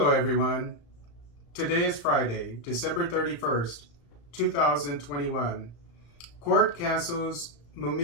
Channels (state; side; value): late; right; 35 ms